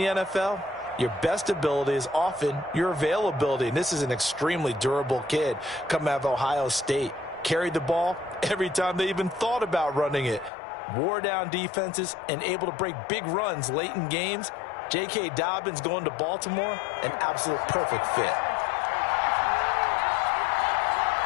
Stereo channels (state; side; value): drops out; right; at 10.5 s